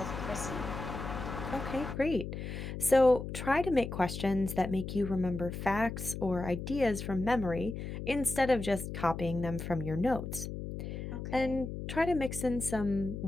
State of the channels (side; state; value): left; noise; hum, 7 dB below the sound